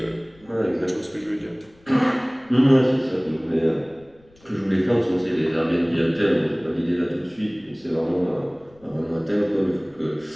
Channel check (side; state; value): left; noise; rumble, 29 dB below the sound